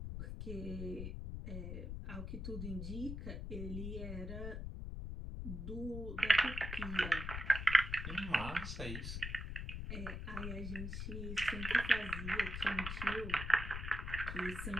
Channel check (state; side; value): noise; left; rumble, 5 dB below the sound